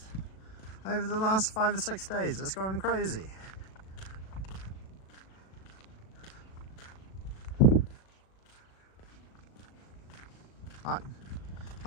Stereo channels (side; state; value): right; late; 37 ms